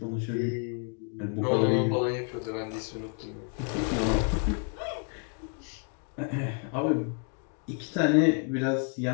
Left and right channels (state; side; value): quieter; right; 37.7 dB